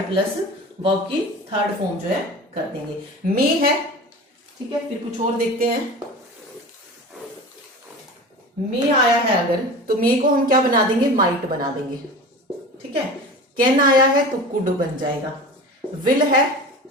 प्लस वर्ब की थर्ड फॉर्म जो है कर देंगे। मे है, ठीक है, फिर कुछ और देखते हैं। मे आया है अगर तो मे को हम क्या बना देंगे? माइट बना देंगे। ठीक है, कैन आया है तो कुड बन जाएगा। विल है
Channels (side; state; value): both; normal; correlation 0.34